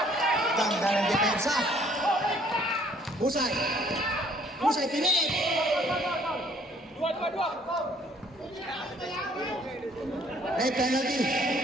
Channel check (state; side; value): normal; both; correlation 0.61